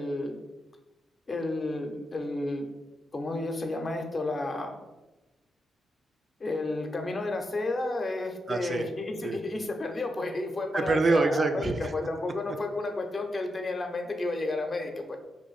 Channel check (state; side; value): normal; both; correlation 0.85